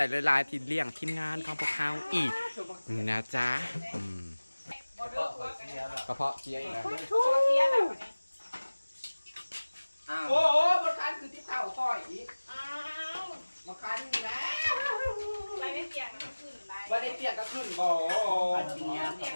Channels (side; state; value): both; inverted; correlation -1.00